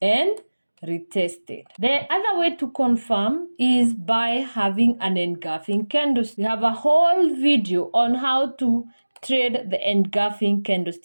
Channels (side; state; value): both; inverted; correlation -1.00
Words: and retested. The other way to confirm is by having an engulfing candlestick. We have a whole video on how to trade the engulfing